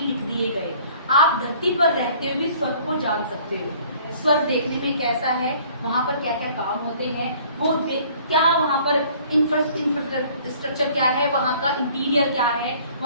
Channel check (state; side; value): inverted; both; correlation -0.55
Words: लिख दिए गए। आप धरती पर रहते हुए भी स्वर्ग को जान सकते हो। स्वर्ग देखने में कैसा है, वहां पर क्या क्या काम होते हैं, वो क्या वहां पर इंफ्रास्ट्रक्चर क्या है, वहां का इंटीरियर क्या है,